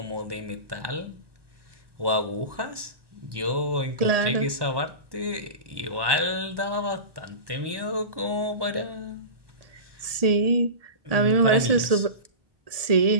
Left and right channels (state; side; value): late; left; 1.2 ms